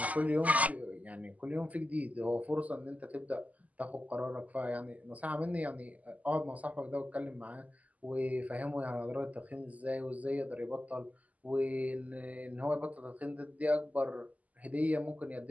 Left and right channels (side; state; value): left; late; 0.074 ms